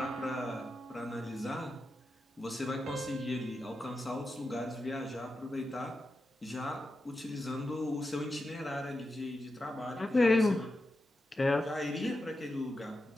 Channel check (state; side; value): normal; both; correlation 0.89